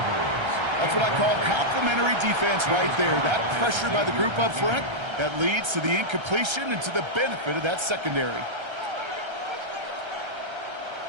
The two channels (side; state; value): left; late; 1.3 ms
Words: That's what I call complementary defense right there. That pressure by the group up front, that leads to the incompletion and to the benefit of that secondary.